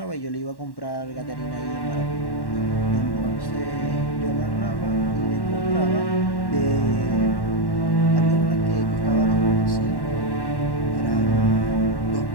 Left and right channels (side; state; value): right; late; 1.1 ms